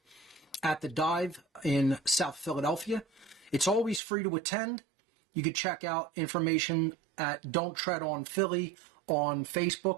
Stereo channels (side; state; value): left; drops out; at 4.0 s